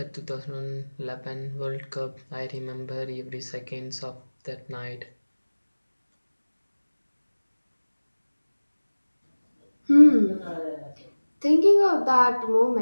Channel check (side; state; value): both; inverted; correlation -1.00